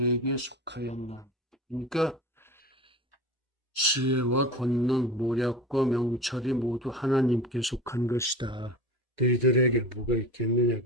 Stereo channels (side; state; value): both; normal; correlation 0.33